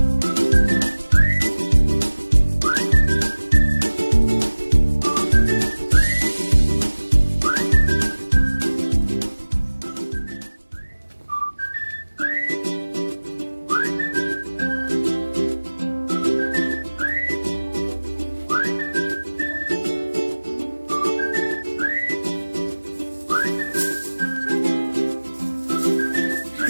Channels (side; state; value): both; inverted; correlation -1.00